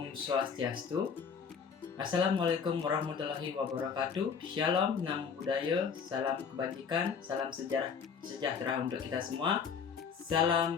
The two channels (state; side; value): quieter; right; 6.3 dB